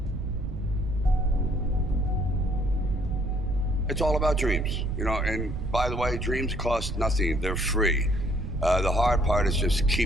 It's all about dreams, you know, and by the way, dreams cost nothing, they're free. The hard part is just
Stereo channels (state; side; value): noise; right; rumble, 7 dB below the sound